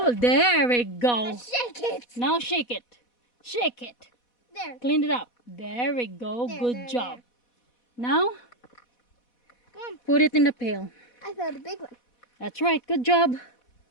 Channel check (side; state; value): right; late; 4.1 ms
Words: There we go. Now shake it. Now shake it. Shake it. There. Clean it up. There we go. There, Good there, job. there. Now, Come on. put it in the pail. I found a big one. That's right. Good job.